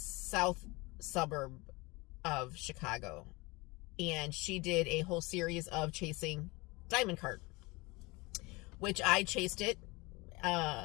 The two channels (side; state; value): right; quieter; 24.4 dB